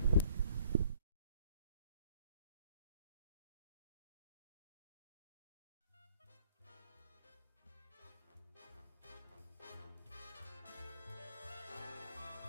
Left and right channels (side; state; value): both; inverted; correlation -0.55